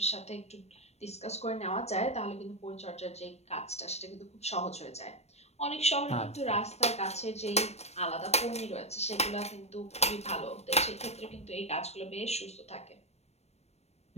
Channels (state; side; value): late; right; 0.31 ms